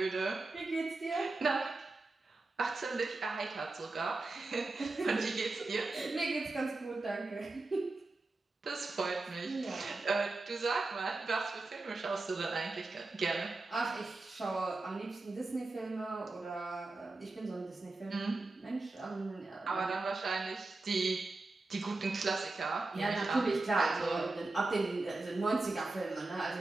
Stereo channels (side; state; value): left; quieter; 3.3 dB